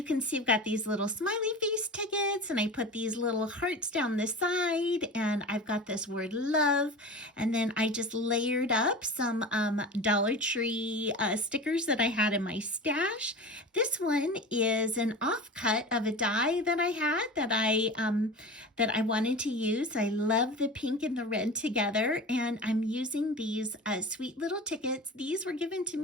can see I've got these little smiley face tickets, and I put these little hearts down the side, and I've got this word love. And then I just layered up some Dollar Tree stickers that I had in my stash. This one is an offcut of a die that I had that I wanted to use. I love the pink and the red together, and I'm using these sweet little tickets. These were given to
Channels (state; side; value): normal; both; correlation 0.33